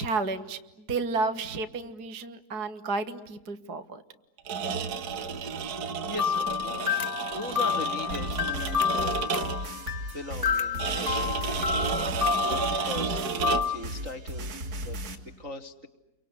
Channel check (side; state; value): left; late; 4.6 ms